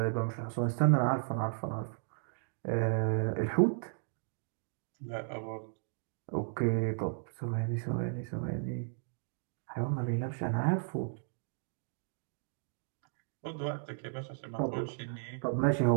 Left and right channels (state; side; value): silent; left; digital silence